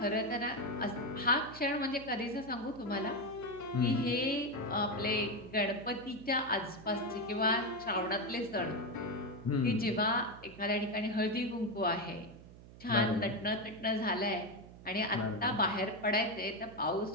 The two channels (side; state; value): right; noise; hum, 18 dB below the sound